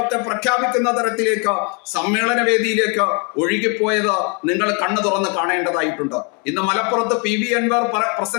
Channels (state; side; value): quieter; right; 34.9 dB